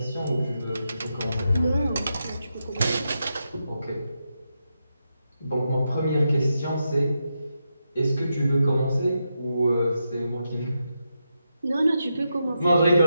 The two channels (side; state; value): both; inverted; correlation -0.86